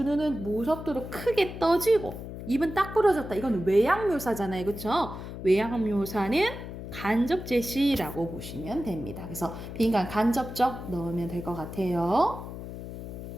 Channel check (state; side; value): noise; left; hum, 9 dB below the sound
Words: 눈은 무섭도록 크게 떠지고 입은 딱 부러졌다. 이건 외양 묘사잖아요. 그렇죠? 외양 묘사는 간접 제시라고 보시면 됩니다. 그래서 빈칸 간접적 넣으면 될 것 같아요.